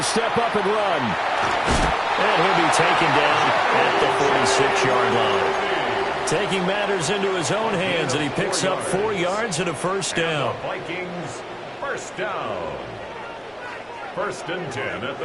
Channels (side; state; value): both; identical; correlation 1.00